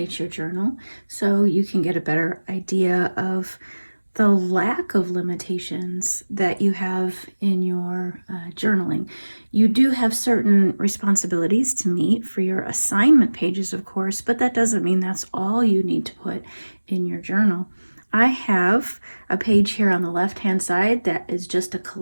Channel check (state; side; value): inverted; both; correlation -1.00